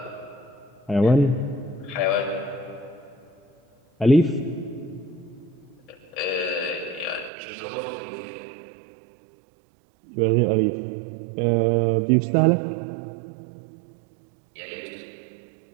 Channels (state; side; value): drops out; left; at 7.3 s